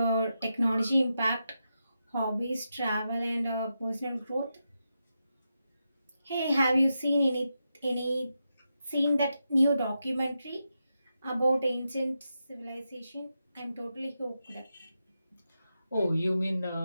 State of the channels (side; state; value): both; inverted; correlation -0.87